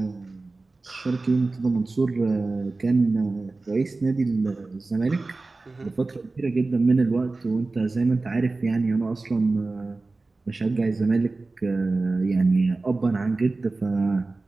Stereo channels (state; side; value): quieter; left; 3.4 dB